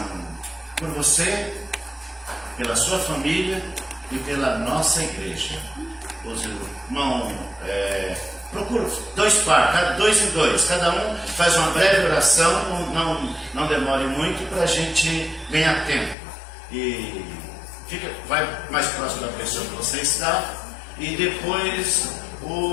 por você, pela sua família e pela nossa igreja. Os irmãos, procura dois par, dois em dois. Cada um faz uma breve oração, não demore muito para a gente ganhar tempo. E vai mais próximo da pessoa que você está. E depois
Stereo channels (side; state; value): right; drops out; at 16.2 s